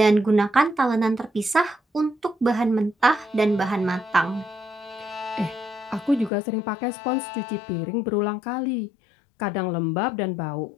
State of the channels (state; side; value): drops out; right; at 6.3 s